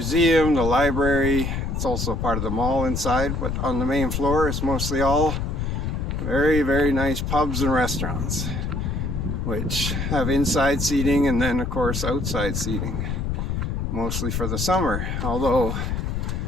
the library. It's also part of the mall inside, but on the main floor it's mostly all very, very nice pubs and restaurants, which have inside seating and then of course outside seating, mostly for the summer. Although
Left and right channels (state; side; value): noise; left; rumble, 2 dB below the sound